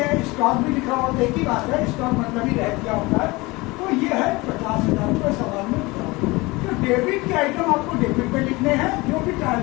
हैं, स्टॉक भी लिखा होता है, एक ही बात है, स्टॉक मतलब ही रहतिया होता है। तो ये है 50,000 रुपये सवाल में लिखा होता है। तो डेबिट के आइटम आपको डेबिट पे लिखने हैं, जो भी ट्रायल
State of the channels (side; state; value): right; quieter; 23.0 dB